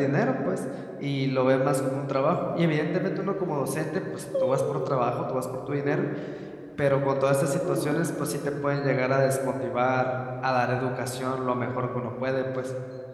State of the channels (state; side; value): identical; both; correlation 1.00